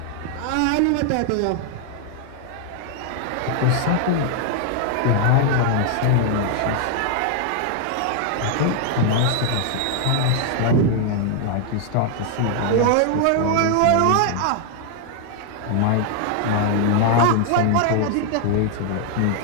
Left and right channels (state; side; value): different; both; correlation 0.00